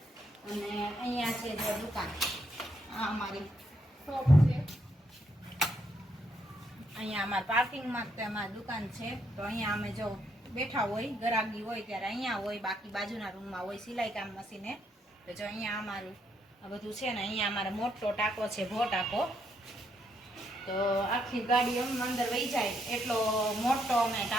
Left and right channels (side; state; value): both; normal; correlation 0.75